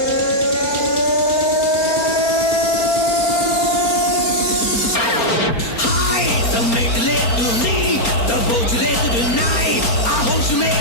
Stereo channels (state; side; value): late; right; 4.3 ms